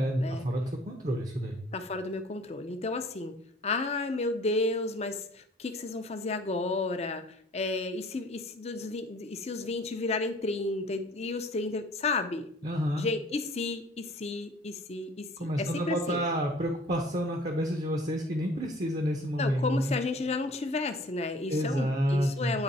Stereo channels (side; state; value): both; normal; correlation 0.52